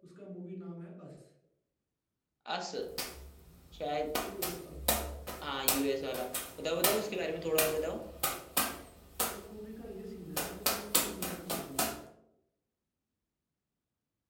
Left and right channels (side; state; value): both; identical; correlation 1.00